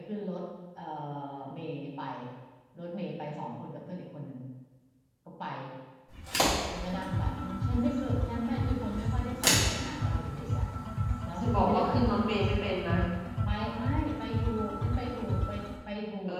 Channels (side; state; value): both; identical; correlation 1.00